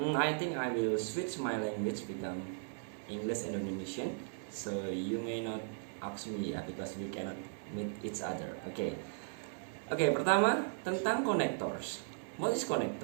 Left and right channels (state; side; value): silent; left; 53 dB below the other